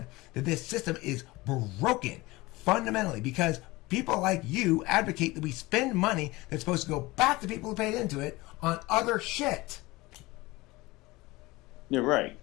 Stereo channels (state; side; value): quieter; right; 21.0 dB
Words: that this system is broken fundamentally because people like you advocate that we spend money that's supposed to go back to people who paid into it on other shit. You're right.